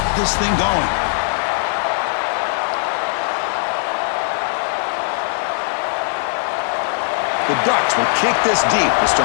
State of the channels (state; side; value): silent; right; digital silence